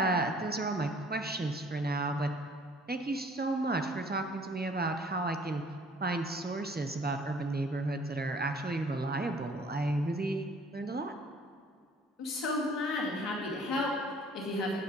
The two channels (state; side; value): normal; both; correlation 0.55